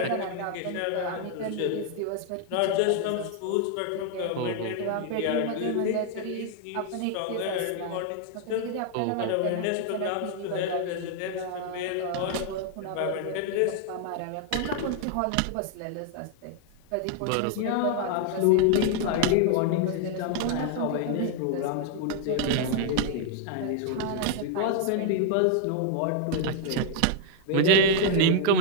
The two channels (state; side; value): different; both; correlation 0.00